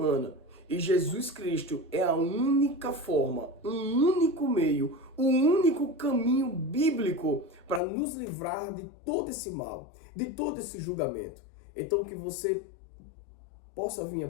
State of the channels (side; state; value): right; drops out; at 7.8 s